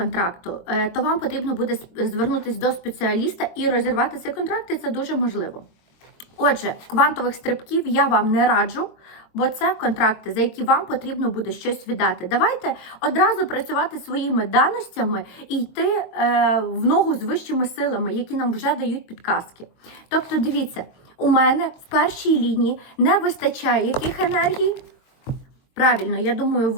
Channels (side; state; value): right; late; 23 ms